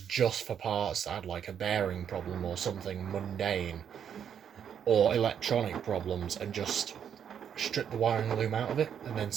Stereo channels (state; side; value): quieter; left; 8.4 dB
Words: just for parts that had, like, a bearing problem or something mundane, or electronic problems, and just strip the wiring loom out of it and then